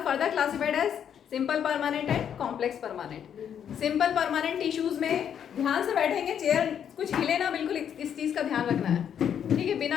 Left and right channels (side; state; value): right; quieter; 8.7 dB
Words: further classified as simple permanent and complex permanent. Simple permanent tissues में ध्यान से बैठेंगे, चेयर कुछ हिले ना, बिल्कुल इस चीज का ध्यान रखना है, ठीक है,